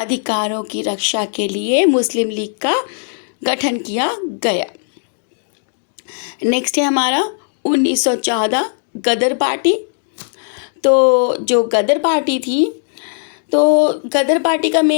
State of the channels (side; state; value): right; silent; 68 dB below the other